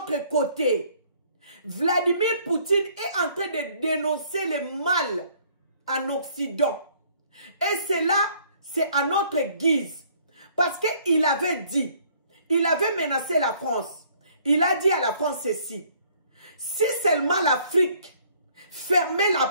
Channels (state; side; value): inverted; both; correlation -0.61